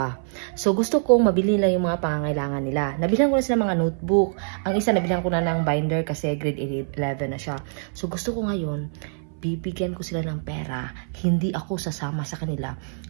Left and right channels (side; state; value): left; silent; 57 dB below the other